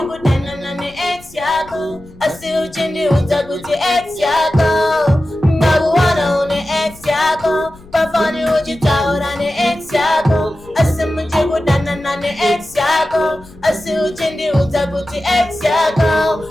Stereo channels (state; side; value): noise; left; rumble, 22 dB below the sound